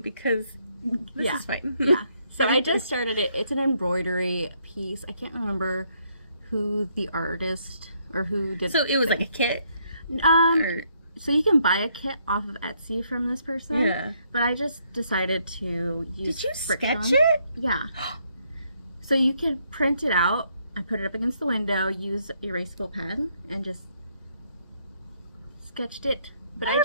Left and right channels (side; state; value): both; inverted; correlation -0.72